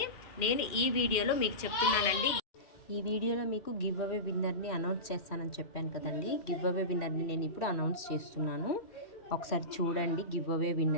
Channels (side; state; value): right; late; 2.4 ms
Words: నేను ఈ వీడియోలో మీకు చెప్తున్నానండి, ఈ వీడియోలో మీకు గివ్ అవే విన్నర్ని అనౌన్స్ చేస్తానని చెప్పాను కదండి. గివ్ అవే విన్నర్ని నేను ఇప్పుడు అనౌన్స్ చేస్తున్నాను. ఒకసారి చూడండి. గివ్ అవే